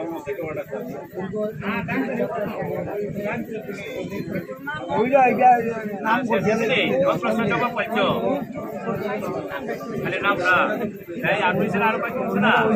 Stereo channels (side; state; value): both; identical; correlation 1.00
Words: পাইছো খালি নামটা আর হয়েছে না আর পাইছো না